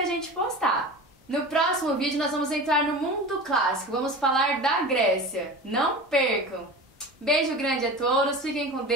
gente postar. No próximo vídeo nós vamos entrar no mundo clássico, vamos falar da Grécia. Não percam! Beijo grande a todos, fiquem com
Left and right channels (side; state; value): both; normal; correlation 0.33